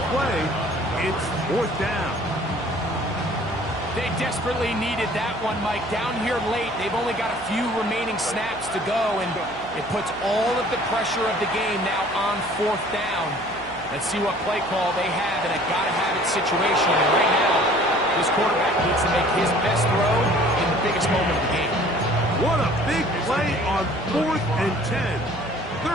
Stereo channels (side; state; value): right; noise; hum, 16 dB below the sound